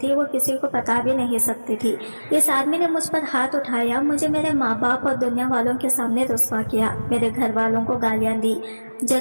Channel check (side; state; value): both; inverted; correlation -1.00